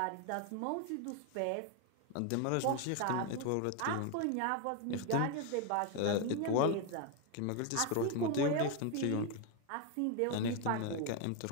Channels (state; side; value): different; both; correlation 0.01